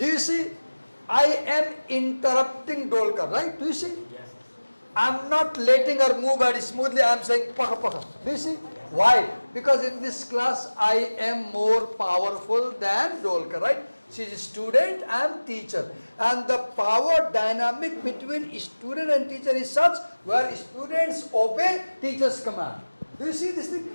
you see? I am interrupting Dolkar, right? Do you see? Yes. I'm not letting her move very smoothly. I'm saying paka paka. Do you see? Why? Because in this class I am more powerful than Dolkar, right? She is a student, I am teacher. And the power dynamic between student and teacher is such where students obey teacher's command. Do you see this thing?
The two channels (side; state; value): both; inverted; correlation -1.00